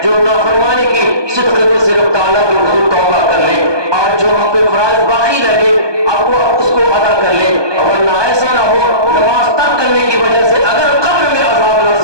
جو نافرمانی کی صدقے سے رب تعالیٰ کے حضور توبہ کر لیں، اور جو ہم پہ فرائض باقی رہے اب وہ اس کو ادا کر لیں، ورنہ ایسا نہ ہو نماز ترک کرنے کی وجہ سے اگر قبر میں عذاب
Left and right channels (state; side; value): late; left; 1.2 ms